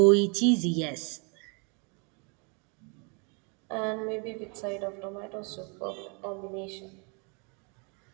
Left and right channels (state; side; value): quieter; left; 35.2 dB